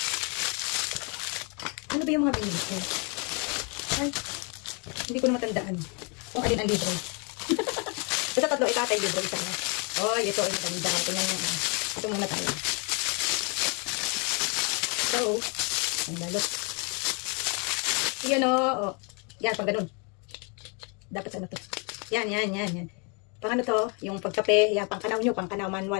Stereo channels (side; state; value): right; quieter; 34.6 dB